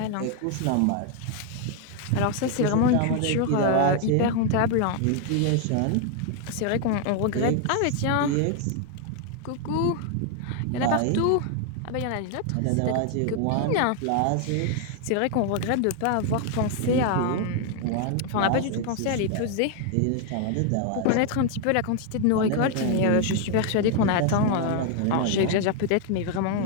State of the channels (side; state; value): both; different; correlation 0.00